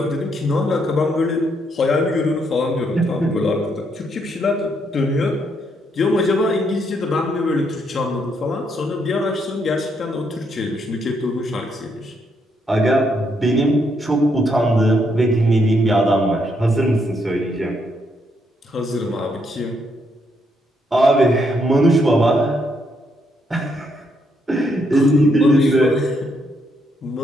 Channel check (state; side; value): normal; both; correlation 0.75